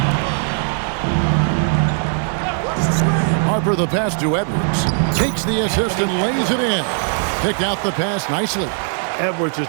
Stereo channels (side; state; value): left; silent; 57 dB below the other